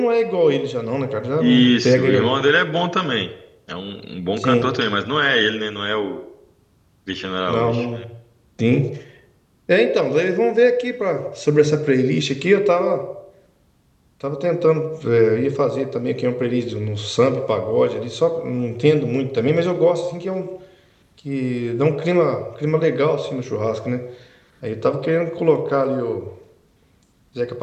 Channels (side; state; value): both; identical; correlation 1.00